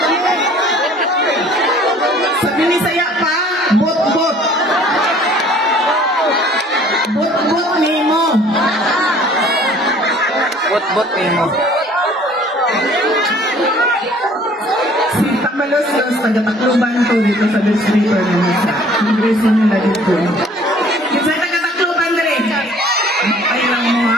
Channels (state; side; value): normal; both; correlation 0.54